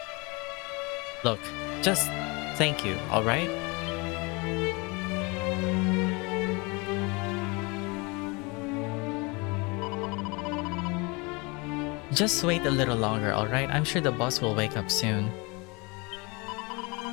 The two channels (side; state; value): right; quieter; 27.7 dB